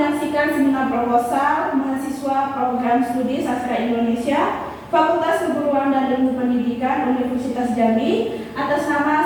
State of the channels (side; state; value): both; identical; correlation 1.00